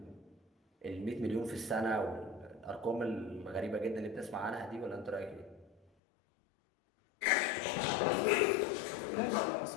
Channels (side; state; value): right; drops out; at 5.8 s